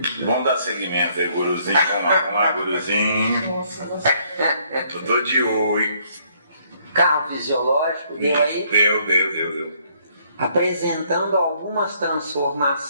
Vamos dar segmento aí, guruzinho. Vamos lá, guruzinho. Nossa. Eu tô de olho. Carro fisiológico, deu aí? Deu. Apresentando algumas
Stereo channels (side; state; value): both; inverted; correlation -0.67